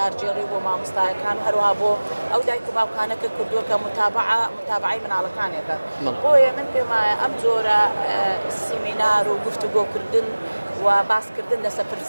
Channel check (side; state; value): both; inverted; correlation -1.00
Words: بۆ مامۆستایەکان و هەروەها بۆ ئەو دایک و باوکانەکە کردووە کە متابعی مناڵەکانێکە. بۆیە من پێمایە ئەم جۆرە سیمینار و گفتوگۆکردن و باسکردن لەسەر